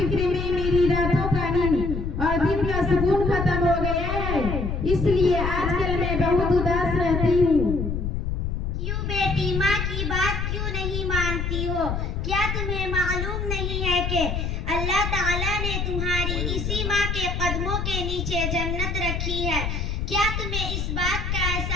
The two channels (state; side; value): noise; left; rumble, 2 dB below the sound